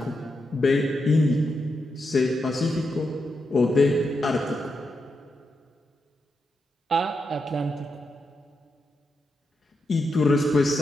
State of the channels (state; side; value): normal; both; correlation 0.85